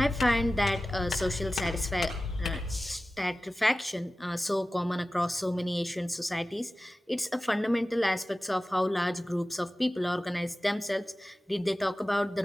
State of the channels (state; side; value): normal; both; correlation 0.96